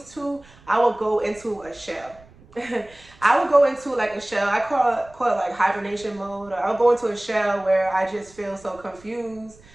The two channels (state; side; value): noise; right; rumble, 25 dB below the sound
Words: to, I would go into a shell. I would go into like a shell. I call it like hibernation mode. Or I'll go into a shell where I just feel so confused